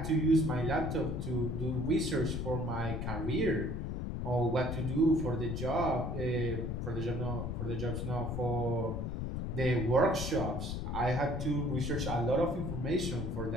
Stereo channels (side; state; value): left; noise; rumble, 3 dB below the sound